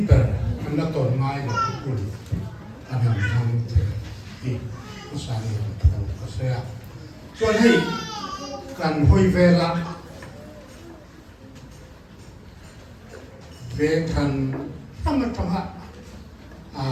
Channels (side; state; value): both; identical; correlation 1.00